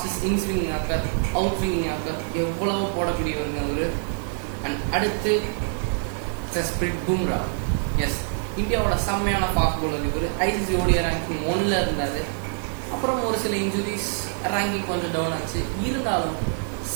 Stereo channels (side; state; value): left; silent; 56 dB below the other